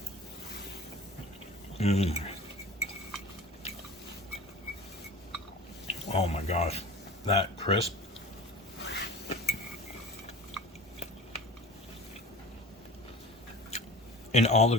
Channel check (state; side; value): normal; both; correlation 0.39